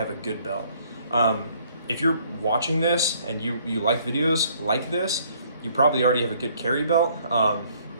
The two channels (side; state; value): both; inverted; correlation -0.62